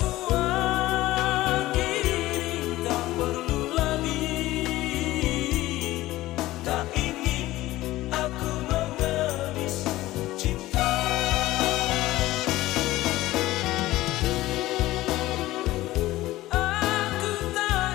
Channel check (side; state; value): right; quieter; 16.9 dB